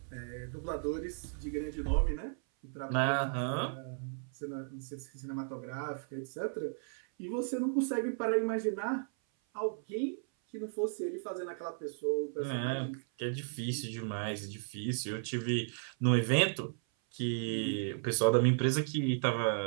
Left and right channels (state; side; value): silent; left; 55 dB below the other